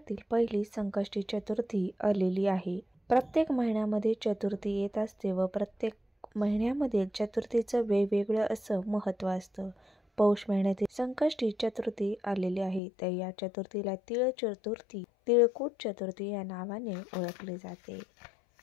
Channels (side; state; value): right; drops out; at 12.8 s